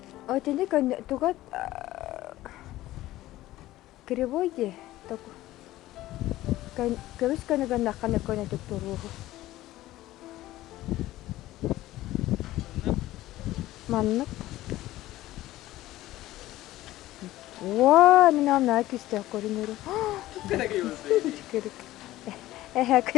Ой, тенде тугат кривой де. Так. Кевис канага нахана кона доктору. Маннак. Вау, минам накисте коринеру. Кырык.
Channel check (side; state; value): right; quieter; 15.9 dB